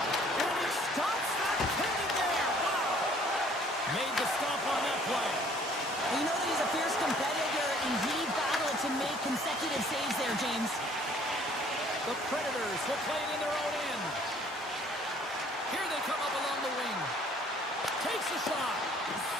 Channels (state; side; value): normal; both; correlation 0.58